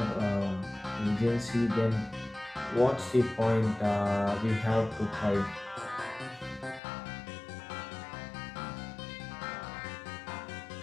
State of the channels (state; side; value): drops out; right; at 6.8 s